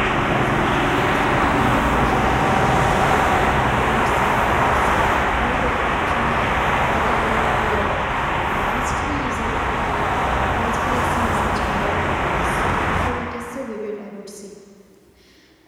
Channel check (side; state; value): both; identical; correlation 1.00